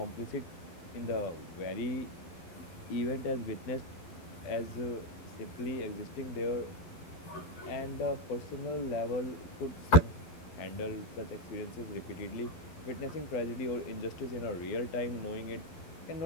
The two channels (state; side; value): late; right; 11 ms